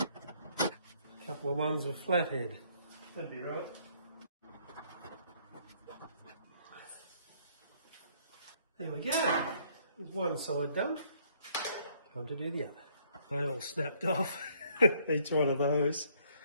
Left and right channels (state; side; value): inverted; both; correlation -0.65